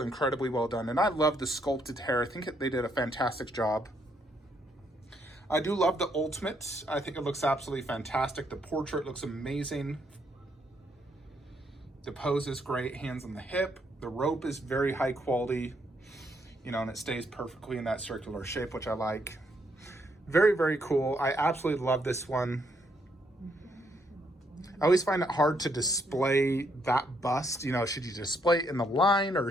well done. And I love the sculpted hair. I think they did a fantastic job. I do love the ultimate. I think it looks absolutely fantastic. The portrait looks amazing. The pose is great, hands on the hip. The rope is very high quality, you know, and it stays perfectly in that circular shape, which I like. Very, very cool. I absolutely love this one. I always find it hard to display that bust. You know, should you display it in the line or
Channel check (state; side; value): normal; both; correlation 0.73